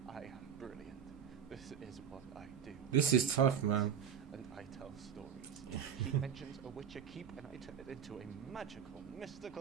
I am brilliant. This is what I do. This is tough, man. And I tell stories. He mentions a witcher keep, and I turn it into a magical,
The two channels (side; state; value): left; quieter; 8.4 dB